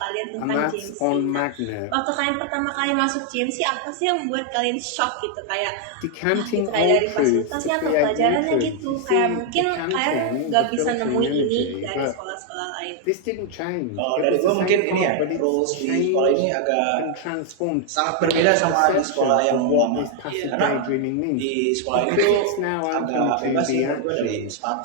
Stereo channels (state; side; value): different; both; correlation 0.00